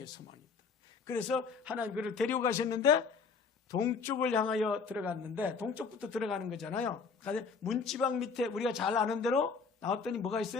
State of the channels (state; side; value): quieter; right; 5.2 dB